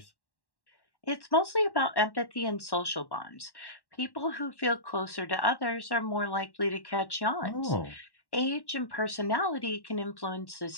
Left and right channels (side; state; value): right; late; 1.1 ms